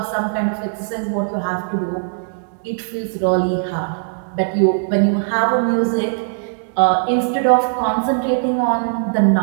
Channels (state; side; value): silent; left; digital silence